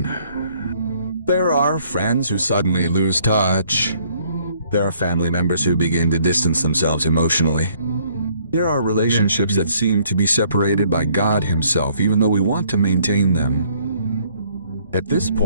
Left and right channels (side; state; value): both; inverted; correlation -0.63